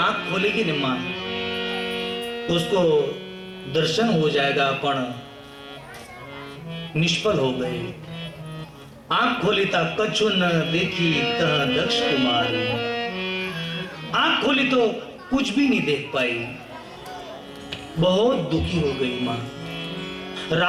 खोलेगी न मां, तो उसको दर्शन हो जाएगा, पण निष्फल हो गए। आंख खोली था कछु न देखी तह दक्ष कुमारी। आंख खोली तो कुछ भी नहीं देख पाई, बहुत दुखी हो गई मां।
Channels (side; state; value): both; identical; correlation 1.00